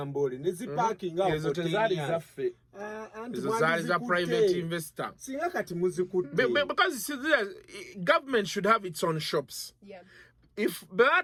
ne ziparking awo ezo tezaali zaffe ezo zaali za private investor singa kati muzikutte because government should have its own shops. If baba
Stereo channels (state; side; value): identical; both; correlation 1.00